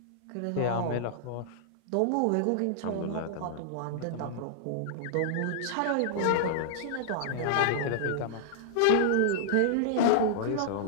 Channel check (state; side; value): different; both; correlation -0.01